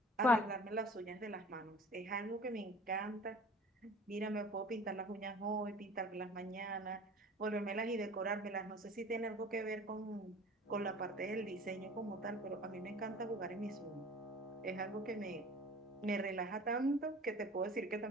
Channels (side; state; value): both; normal; correlation 0.45